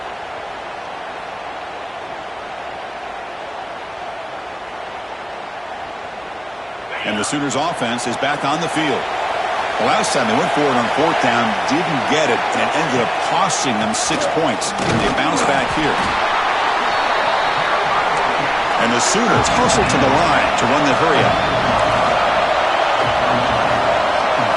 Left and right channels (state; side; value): identical; both; correlation 1.00